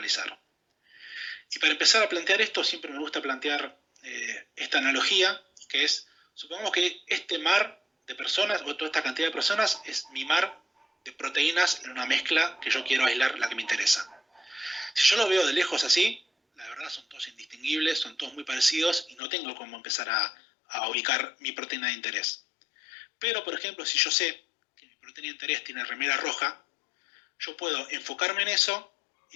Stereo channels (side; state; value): right; drops out; at 19.2 s